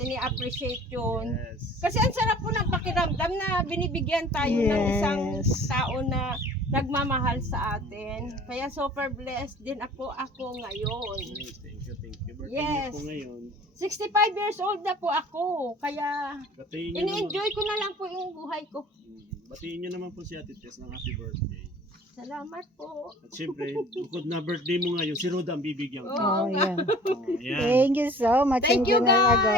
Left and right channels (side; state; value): both; normal; correlation 0.47